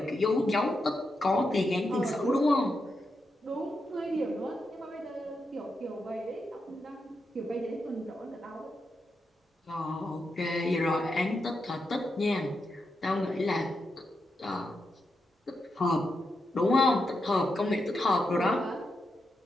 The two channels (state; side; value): normal; both; correlation 0.85